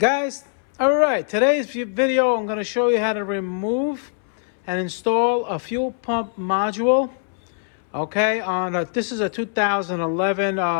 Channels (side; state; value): right; silent; 64 dB below the other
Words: alright, today's video I'm going to show you how to remove and install a fuel pump module. Okay, this is a 2011